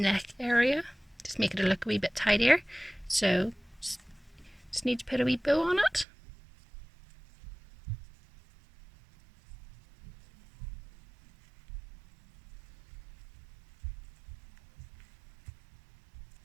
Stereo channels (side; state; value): left; drops out; at 6.1 s